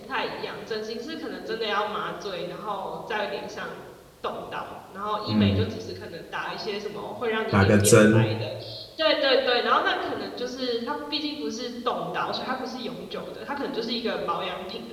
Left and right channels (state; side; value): identical; both; correlation 1.00